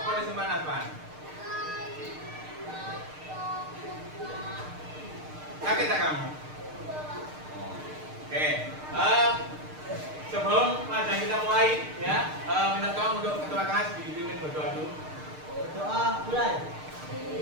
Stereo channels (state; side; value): late; left; 6.6 ms